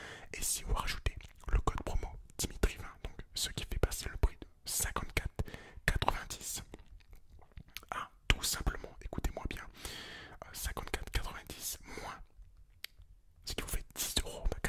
Et si vous rajoutez le code promo Dimitri20, donc ce qui fait passer le prix de 54,90 à tout simplement, écoutez-moi bien, 54,90 moins, ce qui vous fait 10 €,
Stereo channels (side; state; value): both; identical; correlation 1.00